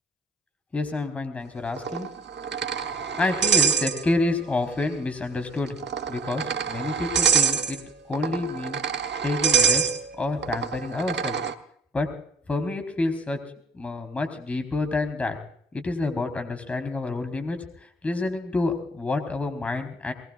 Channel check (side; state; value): both; normal; correlation 0.53